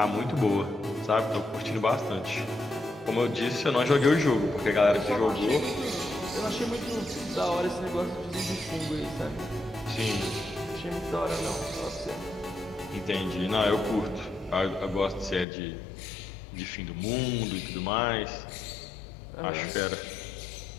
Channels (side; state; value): right; drops out; at 15.5 s